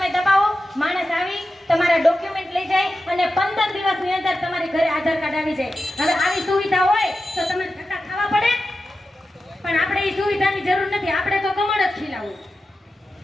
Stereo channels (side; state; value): both; normal; correlation 0.92